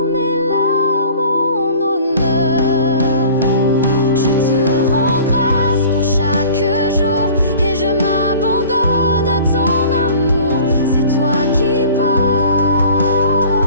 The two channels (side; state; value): both; inverted; correlation -0.46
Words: mes larmes en honneur. Je te rends grâce pour chaque jour et je m'abandonne à ton amour. C'est toi qui